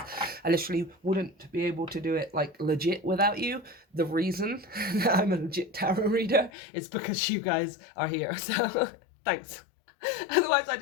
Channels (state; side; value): drops out; right; at 6.5 s